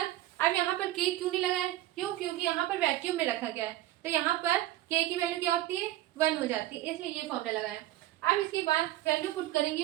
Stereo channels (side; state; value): left; quieter; 15.3 dB